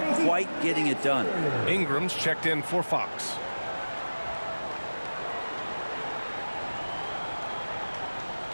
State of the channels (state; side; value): inverted; both; correlation -1.00